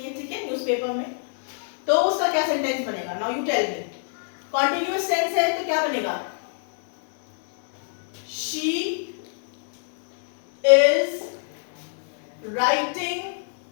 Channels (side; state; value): right; silent; 62 dB below the other